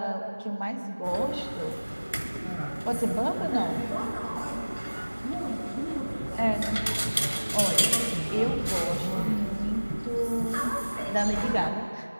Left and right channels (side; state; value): both; inverted; correlation -1.00